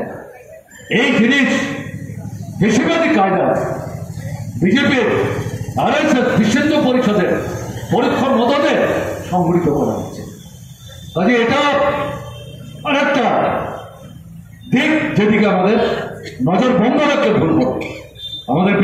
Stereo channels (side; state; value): both; identical; correlation 1.00